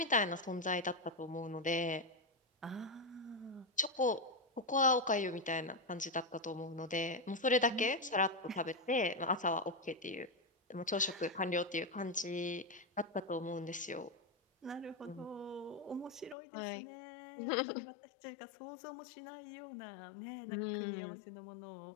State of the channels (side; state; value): right; drops out; at 16.4 s